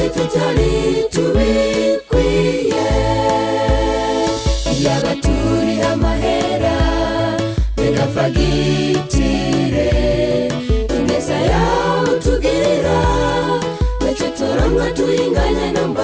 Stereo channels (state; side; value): identical; both; correlation 1.00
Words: tutari tubikwiye. Yaba turi amahera benga fagitire ineza yawe utugirira ntacyo turonka tuyinganya